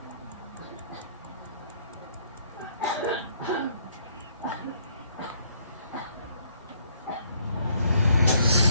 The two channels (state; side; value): inverted; both; correlation -0.66